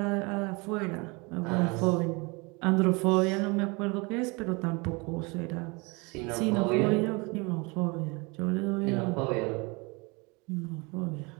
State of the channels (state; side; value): quieter; left; 28.1 dB